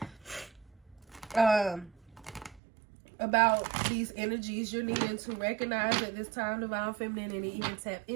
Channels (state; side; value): drops out; left; at 2.6 s